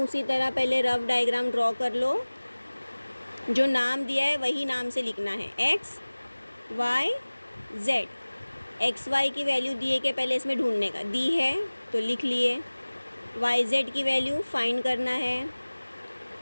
तरह पहले रफ डायग्राम ड्रॉ कर लो, जो नाम दिया है वही नाम से लिखना है, x Y z. X y की वैल्यू दिए के पहले इसमें ढूंढने का, दी है तो लिख लिए। वाई जेड की वैल्यू फाइंड करना है,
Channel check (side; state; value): both; inverted; correlation -1.00